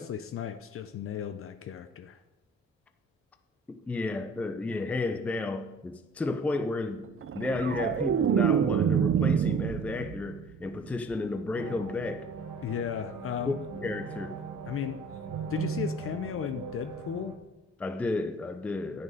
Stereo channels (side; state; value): both; normal; correlation 0.49